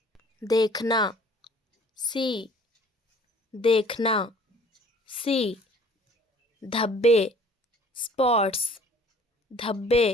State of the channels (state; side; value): normal; both; correlation 0.53